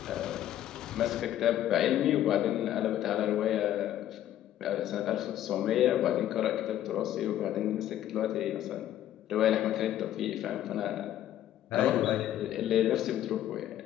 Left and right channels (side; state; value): right; quieter; 12.2 dB